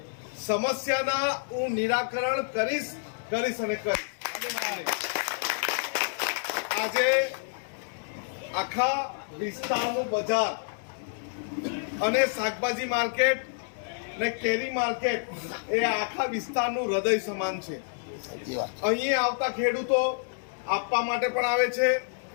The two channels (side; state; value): right; silent; digital silence